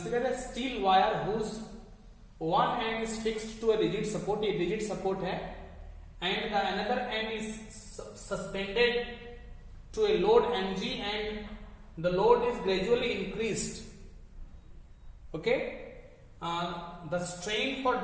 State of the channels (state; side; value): identical; both; correlation 1.00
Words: a steel wire whose one end is fixed to a rigid support, ये रिजिड सपोर्ट है, and the another end is suspended to a load mg and the load is gradually increased, okay. The strain for